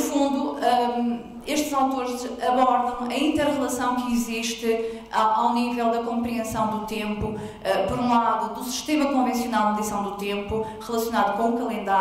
estes autores abordam a inter-relação que existe ao nível da compreensão do tempo, por um lado, do sistema convencional de medição do tempo, relacionado com o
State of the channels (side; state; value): both; identical; correlation 1.00